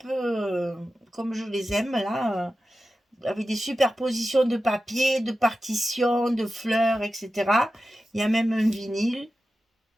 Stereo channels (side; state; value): both; normal; correlation 0.93